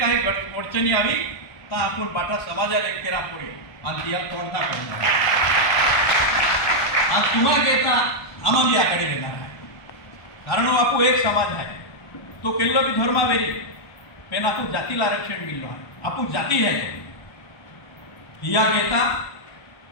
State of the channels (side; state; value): right; late; 1.2 ms